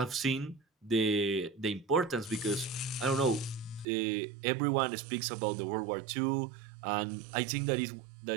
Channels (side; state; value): left; drops out; at 3.9 s